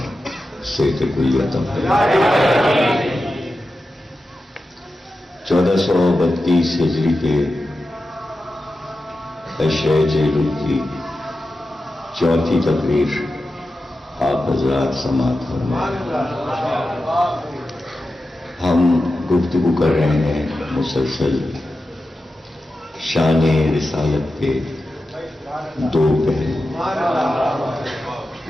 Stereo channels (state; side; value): normal; both; correlation 0.92